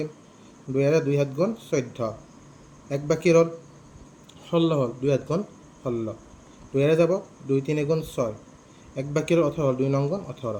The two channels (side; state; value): both; identical; correlation 1.00